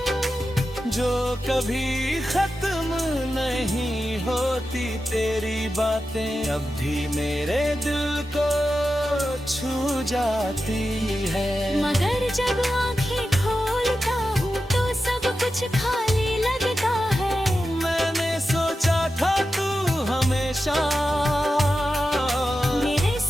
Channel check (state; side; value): normal; both; correlation 0.91